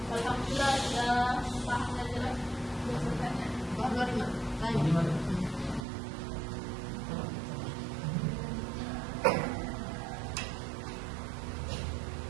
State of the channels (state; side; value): drops out; left; at 5.9 s